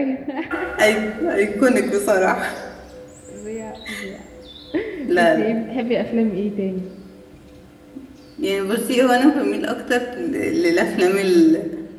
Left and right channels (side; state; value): both; identical; correlation 1.00